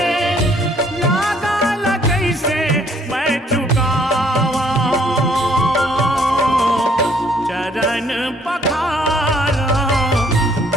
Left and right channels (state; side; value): normal; both; correlation 0.63